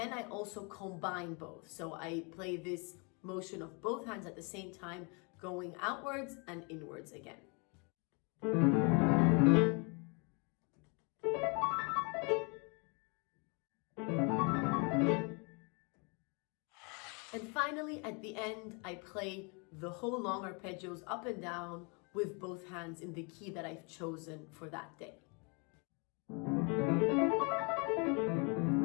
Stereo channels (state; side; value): quieter; right; 33.3 dB